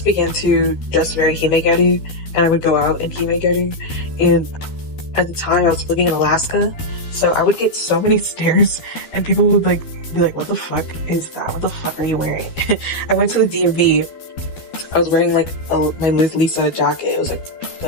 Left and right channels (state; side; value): late; right; 12 ms